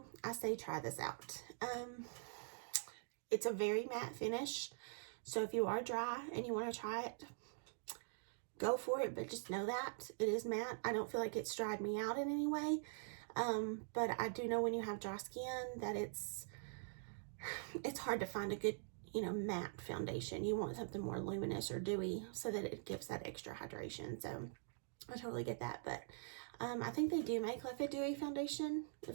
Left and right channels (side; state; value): left; silent; digital silence